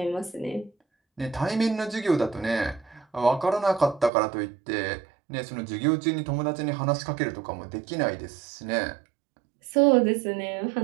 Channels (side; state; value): left; drops out; at 4.1 s